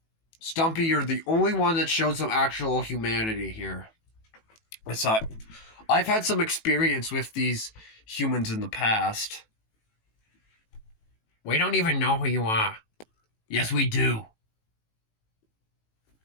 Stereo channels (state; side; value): late; right; 18 ms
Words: Stumpy, you're the only one that showed some actual humanity here. I've had some experience with these humans in the past. We don't even know who you are. Yes, we do.